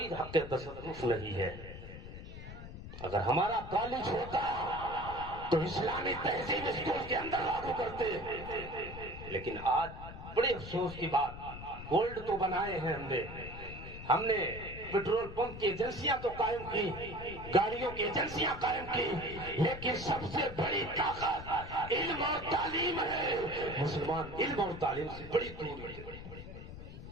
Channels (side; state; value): left; noise; rumble, 11 dB below the sound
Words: حق تصرف نہیں ہے۔ اگر ہمارا کالج ہوتا تو اسلامی تہذیب اسکول کے اندر لاگو کرتے، لیکن آج بڑے افسوس کی بات، گولڈ تو بنائے ہیں ہم نے پیٹرول پمپ کی ایجنسیاں تو قائم کی، گاڑیوں کی ایجنسیاں قائم کی، لیکن سب سے بڑی طاقت علم اور تعلیم ہے۔ مسلمان علم اور تعلیم سے بڑی دور ہے۔